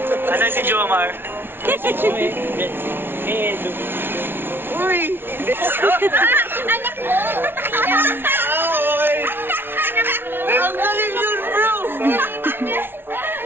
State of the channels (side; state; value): left; late; 0.11 ms